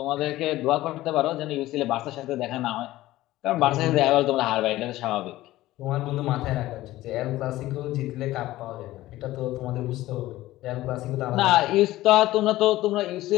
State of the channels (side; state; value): right; quieter; 16.4 dB